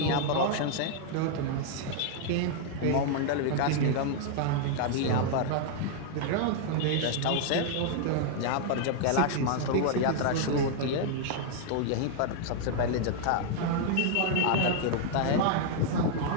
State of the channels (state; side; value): different; both; correlation 0.00